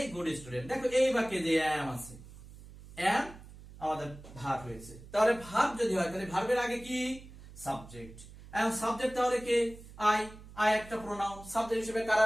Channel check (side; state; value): right; noise; hum, 18 dB below the sound